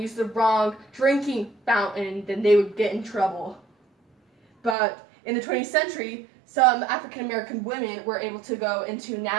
the wrong drinking fountain, then they would get in trouble. But in the 20th century, some African American women were able to go into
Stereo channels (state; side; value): drops out; left; at 4.8 s